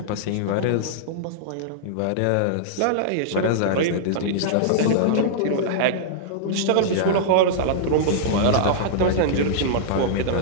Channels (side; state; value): both; different; correlation -0.02